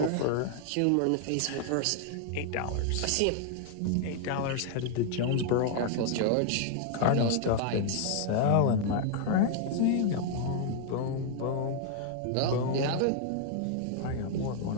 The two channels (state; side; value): different; both; correlation 0.00